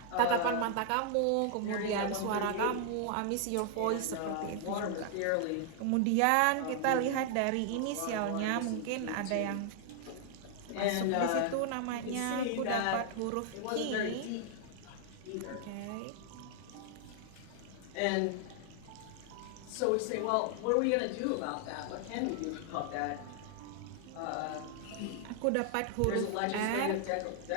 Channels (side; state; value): both; different; correlation 0.00